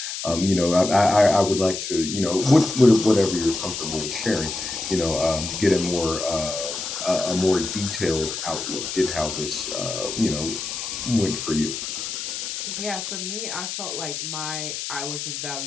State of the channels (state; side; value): noise; left; hiss, 5 dB below the sound